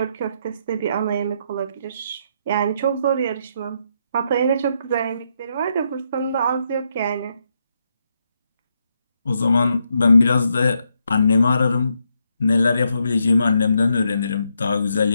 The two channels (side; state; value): both; inverted; correlation -0.79